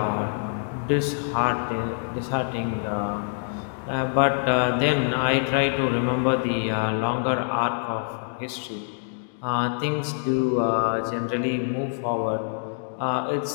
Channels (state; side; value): silent; right; digital silence